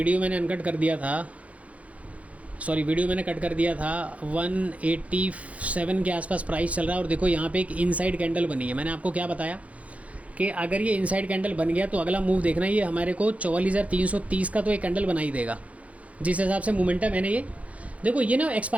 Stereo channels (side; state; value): left; late; 0.066 ms